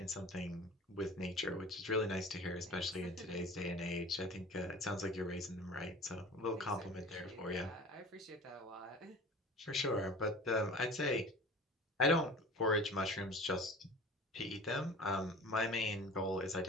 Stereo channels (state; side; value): normal; both; correlation 0.40